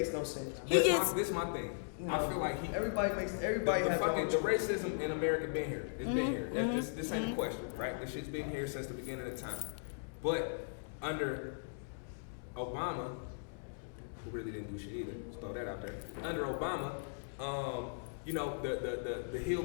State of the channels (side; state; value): right; silent; digital silence